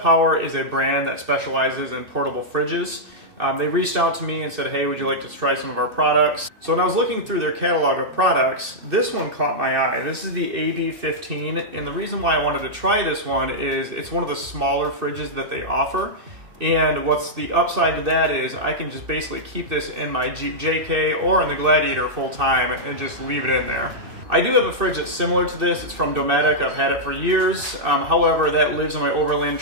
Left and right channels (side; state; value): left; late; 2.6 ms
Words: is a brand that specializes in portable fridges. They reached out to me and said, hey, would you like to try some of our products? So when I was looking through their catalog of products, this one caught my eye. This is the AB15, and the reason why I wanted to try this one is it's one of the smaller fridges that they offer. And what's the upside to that is I can just basically keep this in my Jeep JK or in the Gladiator full time and just leave it in there. I do have a fridge that's similar to this. It's from Dometic. I've had it for years. However, that lives in my overland